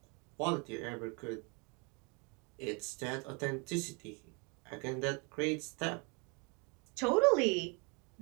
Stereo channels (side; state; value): left; quieter; 32.6 dB